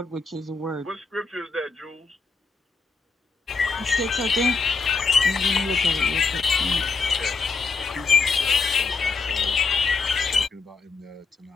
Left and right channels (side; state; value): right; quieter; 4.5 dB